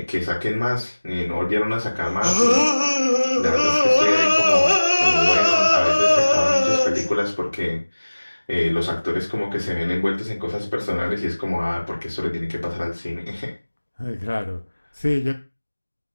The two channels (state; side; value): inverted; both; correlation -1.00